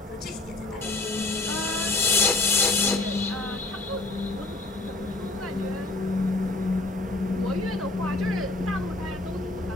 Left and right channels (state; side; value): quieter; right; 3.1 dB